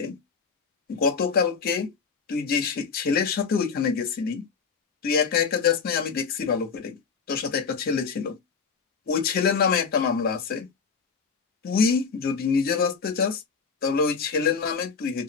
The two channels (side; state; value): right; quieter; 5.5 dB